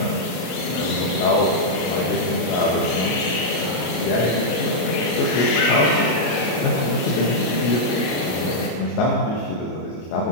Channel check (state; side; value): late; right; 33 ms